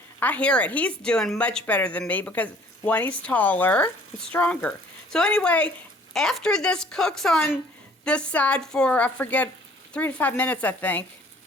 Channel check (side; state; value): both; normal; correlation 0.55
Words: I hear it. He's doing much better than me because one, he's taller and stronger. So anyway, after this cooks on this side for, I forget, 3 to 5 minutes, I think,